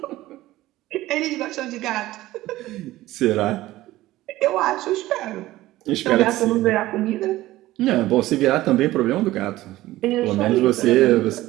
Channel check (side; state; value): left; quieter; 16.5 dB